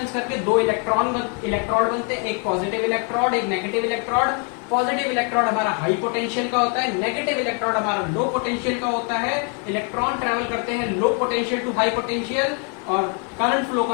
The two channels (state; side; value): quieter; right; 36.9 dB